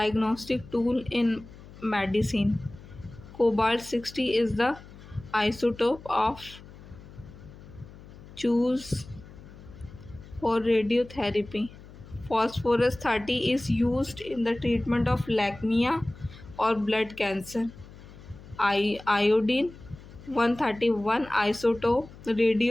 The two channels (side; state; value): left; noise; hum, 18 dB below the sound